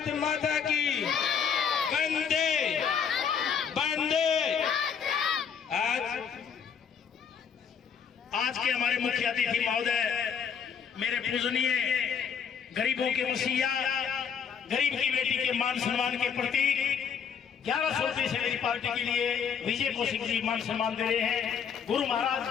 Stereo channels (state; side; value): quieter; right; 7.1 dB